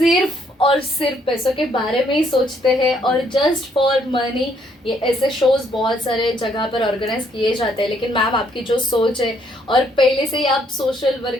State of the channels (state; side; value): normal; both; correlation 0.69